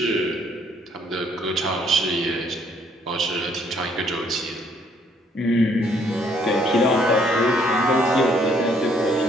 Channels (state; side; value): normal; both; correlation 0.66